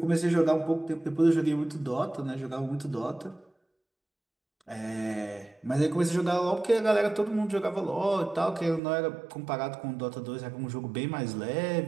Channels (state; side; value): drops out; left; at 8.8 s